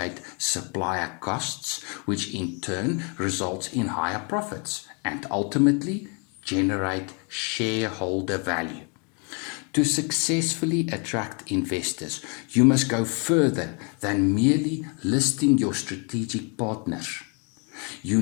supplier costs, which in turn results in higher profits and ultimately generate shareholder value. To successfully attract investors, you must go further than merely listing your strategic partners. You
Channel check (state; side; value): quieter; right; 35.4 dB